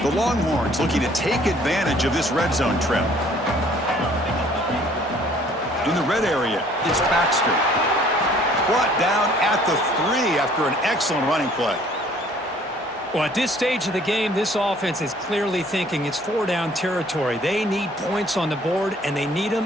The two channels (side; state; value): both; normal; correlation 0.57